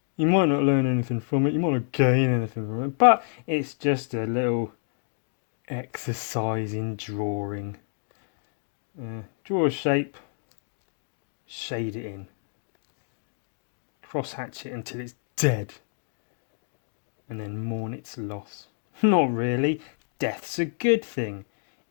You might not learn anything from it. You might not gain anything from it. But it's just a little exercise in drawing. Draw a shape. Shade it in. Cross hatch it until it's dead. And then mourn its loss. Not really. Death's a good thing.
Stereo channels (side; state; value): right; silent; digital silence